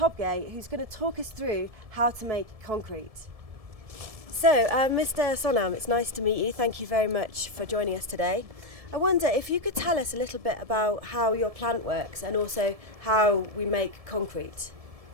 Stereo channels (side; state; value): left; late; 1.7 ms